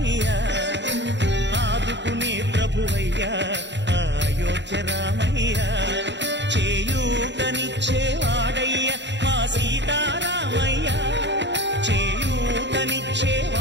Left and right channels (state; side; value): late; left; 0.52 ms